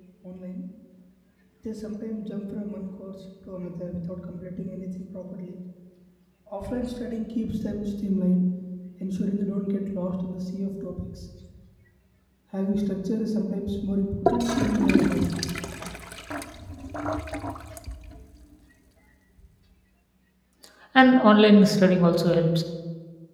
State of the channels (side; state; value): both; identical; correlation 1.00